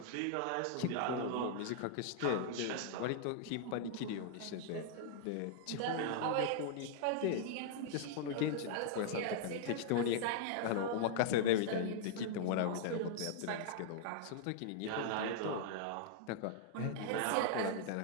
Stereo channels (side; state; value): both; different; correlation -0.01